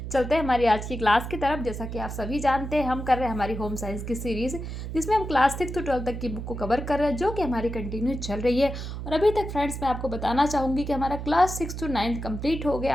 चलते हैं हमारी आज की क्लास की तरफ। जैसा कि आप सभी जानते हैं, हम कर रहे हैं हमारी होम साइंस की सीरीज़, जिसमें हम क्लास 6 to 12 तक की बुक को कवर कर रहे हैं, जो कि हमारी कंटिन्यू चल रही है। और अभी तक फ्रेंड्स मैं आपको बताना चाहूँगी कि हमारा क्लास 6 to 9 कंप्लीट हो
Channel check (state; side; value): noise; right; hum, 7 dB below the sound